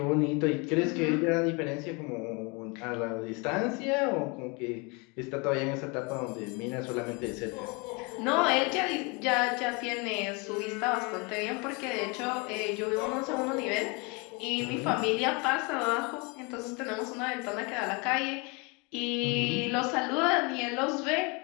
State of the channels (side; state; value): right; quieter; 30.0 dB